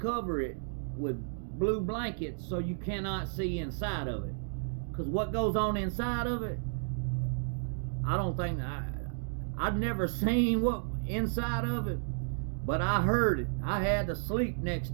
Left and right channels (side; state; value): left; silent; digital silence